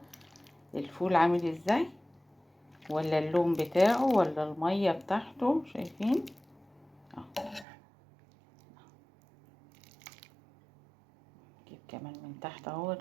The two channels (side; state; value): left; drops out; at 7.7 s